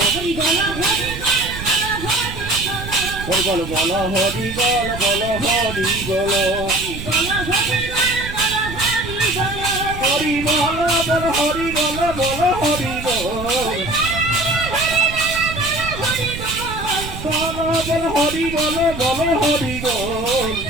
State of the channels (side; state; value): right; noise; rumble, 10 dB below the sound